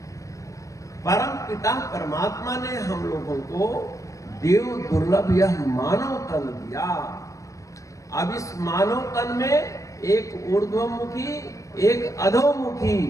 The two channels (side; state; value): right; late; 0.16 ms